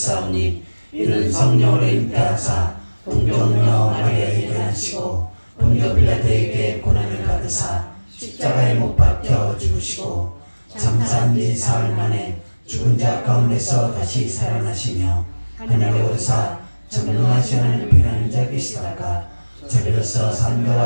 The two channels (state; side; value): inverted; both; correlation -1.00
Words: 이는 성령으로 잉태하사 동정녀 마리아에게 나시고 본교 빌라도에게 고난을 받으사 십자가에 못 박혀 죽으시고 장사한 지 사흘 만에 죽은 자 가운데서 다시 살아나시며 하늘에 오르사 전능하신 하나님 편한 자 계시다가 저리로서